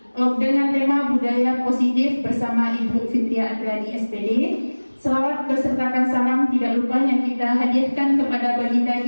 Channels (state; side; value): inverted; both; correlation -1.00